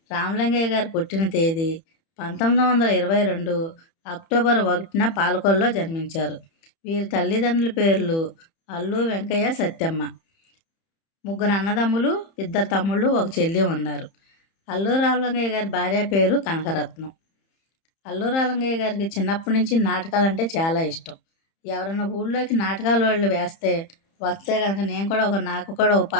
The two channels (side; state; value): right; late; 30 ms